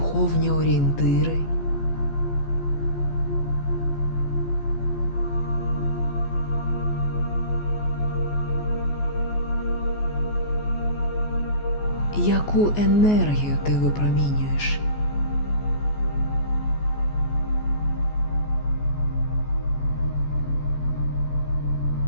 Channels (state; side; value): late; right; 14 ms